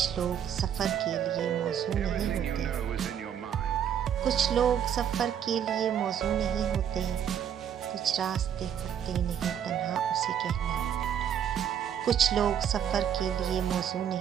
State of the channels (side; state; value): left; quieter; 9.0 dB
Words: लोग सफ़र के लिए मौजू नहीं होते, कुछ लोग सफ़र के लिए मौजू नहीं होते, कुछ रास्ते कटते नहीं तन्हा उसे कहना। कुछ लोग सफ़र के लिए मौजू